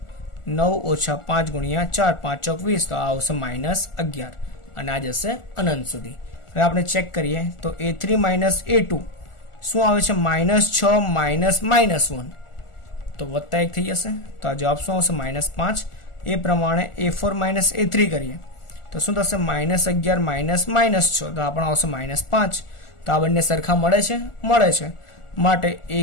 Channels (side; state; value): right; late; 1.4 ms